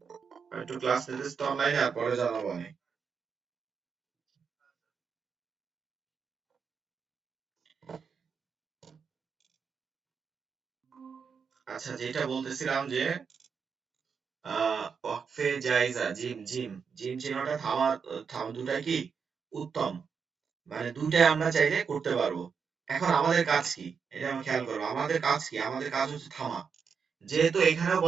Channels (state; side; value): quieter; left; 6.1 dB